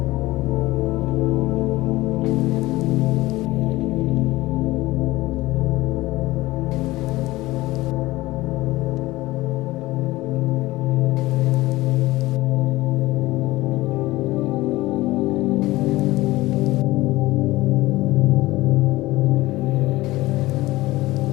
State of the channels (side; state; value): right; quieter; 18.8 dB